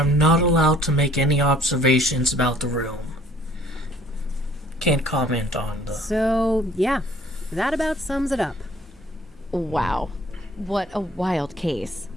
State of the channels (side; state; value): both; normal; correlation 0.57